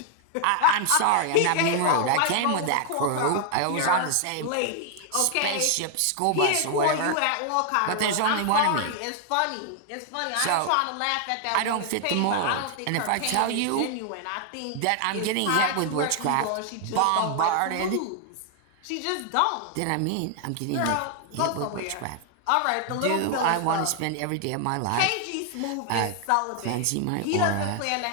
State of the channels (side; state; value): both; different; correlation 0.00